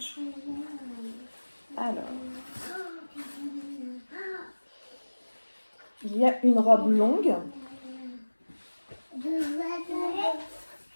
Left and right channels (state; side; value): inverted; both; correlation -1.00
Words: Alors, il y a une robe longue